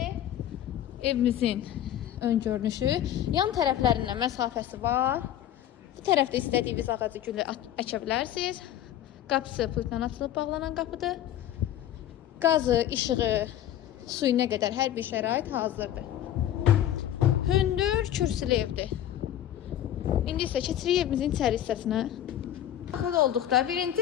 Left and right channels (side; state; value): right; quieter; 11.6 dB